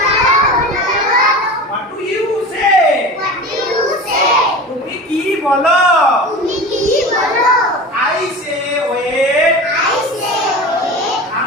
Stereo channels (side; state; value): both; normal; correlation 0.32